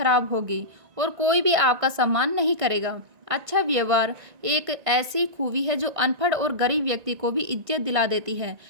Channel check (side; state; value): left; late; 1.9 ms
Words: होगी और कोई भी आपका सम्मान नहीं करेगा। अच्छा व्यवहार एक ऐसी खूबी है जो अनपढ़ और गरीब व्यक्ति को भी इज्जत दिला देती है,